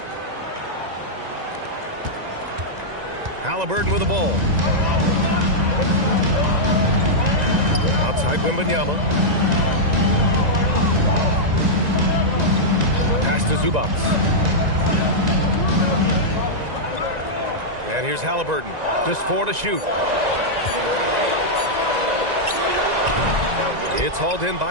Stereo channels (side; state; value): left; late; 1.9 ms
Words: Halliburton with the ball. Outside Wembanyama. Pass to Zubac. And here's Halliburton. Just 4 to shoot. It's hauled in